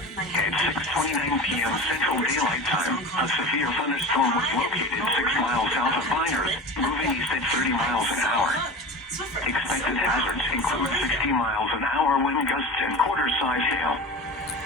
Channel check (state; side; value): normal; both; correlation 0.32